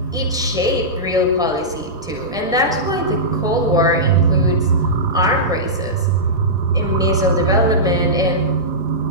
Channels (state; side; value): normal; both; correlation -0.14